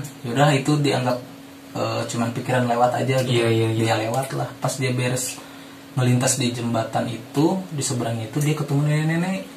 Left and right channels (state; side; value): identical; both; correlation 1.00